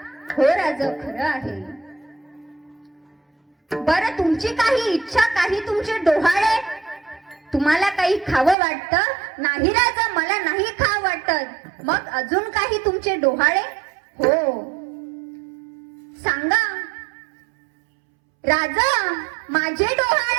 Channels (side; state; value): left; drops out; at 8.6 s